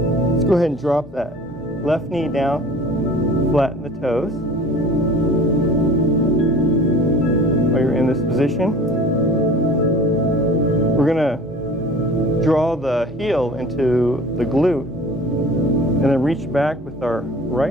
go ahead and drop that left knee down, flatten the toes. While you're in this position, we're going to draw the heel into the glute and then reach back with our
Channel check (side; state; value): both; normal; correlation 0.43